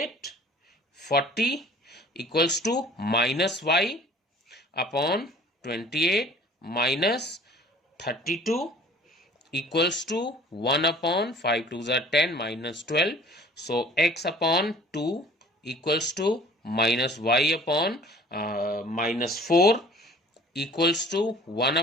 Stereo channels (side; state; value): both; normal; correlation 0.49